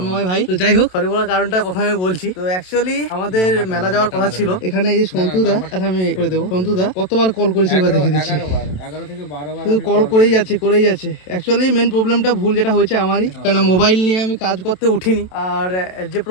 ভাই। তো যাই হোক, সরি বলার কারণটা প্রথমে বলছি। তো অ্যাকচুয়ালি আমাদের মেলা যাওয়ার কথা ছিল। এখানে এই যে সন্তুদা, আচ্ছা আমি করে দেবো। সন্তুদা কতবার কল করেছি এবার দেখে দিচ্ছি। 11 থেকে 12 বার তুই কল করেই যাচ্ছে। অ্যাকচুয়ালি মেন প্রবলেমটা ভুল যেটা হয়েছে আমারই, কেন মোবাইল নিয়ে আমি কাজ করতে উঠিনি। আর যে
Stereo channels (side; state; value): right; late; 27 ms